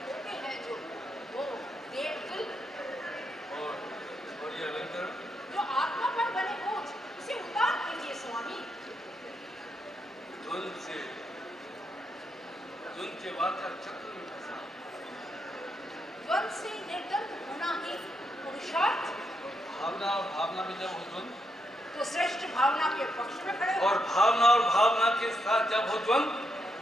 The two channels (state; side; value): normal; both; correlation 0.81